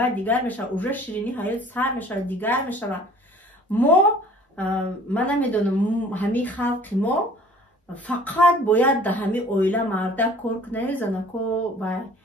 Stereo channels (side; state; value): both; normal; correlation 0.51